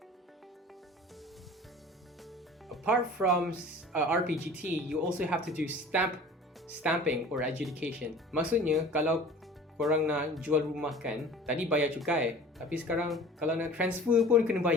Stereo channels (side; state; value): both; normal; correlation 0.43